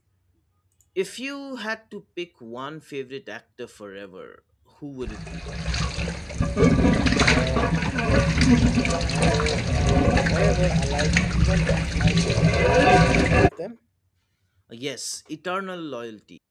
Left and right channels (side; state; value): both; identical; correlation 1.00